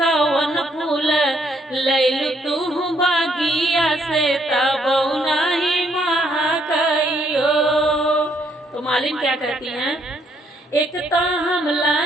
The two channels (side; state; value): both; normal; correlation 0.70